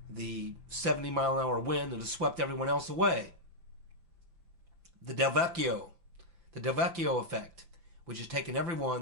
the 70-mile-an-hour wind that has swept everyone else away. The Del Vecchio effect, which has taken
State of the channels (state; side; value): late; left; 5.9 ms